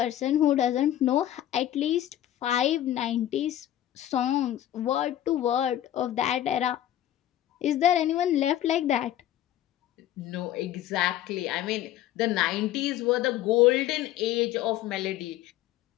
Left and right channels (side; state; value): right; quieter; 12.4 dB